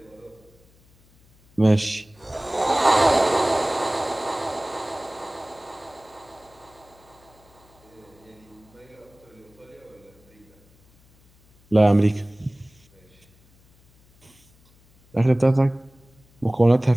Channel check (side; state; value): left; noise; hum, 30 dB below the sound